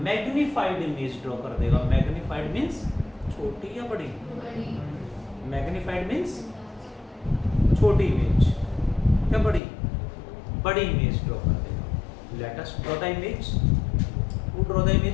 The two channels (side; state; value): right; drops out; at 9.6 s